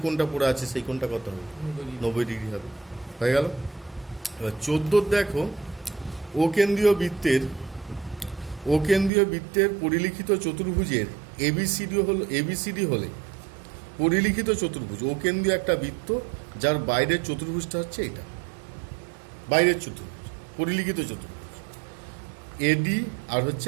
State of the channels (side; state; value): left; drops out; at 9.1 s